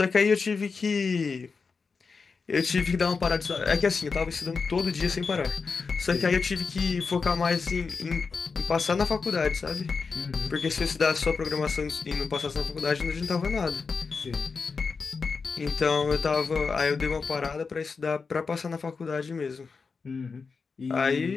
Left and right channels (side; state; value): right; quieter; 4.9 dB